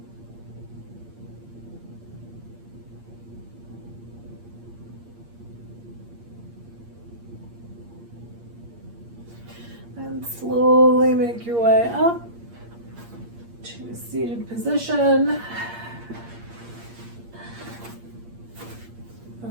And slowly make your way up to a seated position.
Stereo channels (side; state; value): left; late; 8.6 ms